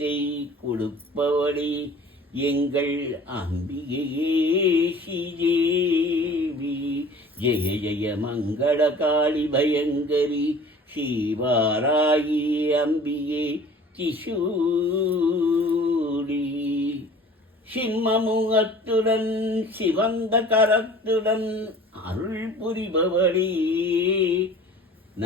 கொடுப்பவளே எங்கள் அம்பிகையே ஸ்ரீதேவி. ஜெய ஜெய மங்கள காளி பயங்கரி சிவாராகி அம்பிகே திசூரி. சிம்மமுகத்துடன் சிவந்த கரத்துடன் அருள் புரிபவளே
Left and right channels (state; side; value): normal; both; correlation 0.47